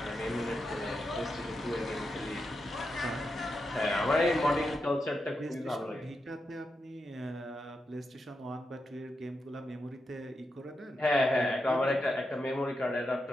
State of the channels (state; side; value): normal; both; correlation 0.86